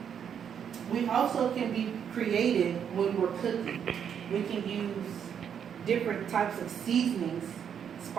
We also can be creative when we're cooking. We can use different types of seasonings,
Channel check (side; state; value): left; quieter; 8.1 dB